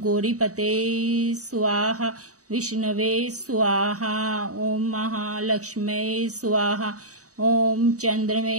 स्वाहा, विष्णवे स्वाहा, ओम महालक्ष्मी स्वाहा, ओम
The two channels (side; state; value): left; late; 0.66 ms